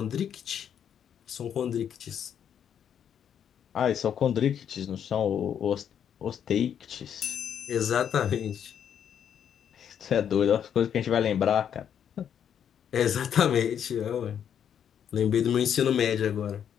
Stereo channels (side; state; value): right; quieter; 8.8 dB